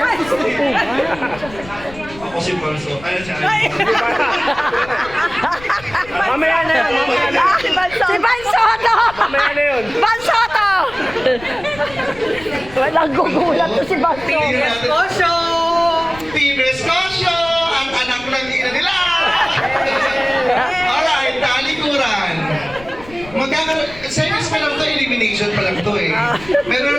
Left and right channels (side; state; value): left; noise; rumble, 18 dB below the sound